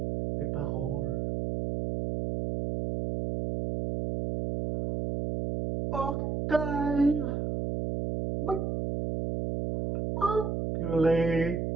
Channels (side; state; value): right; noise; hum, 2 dB below the sound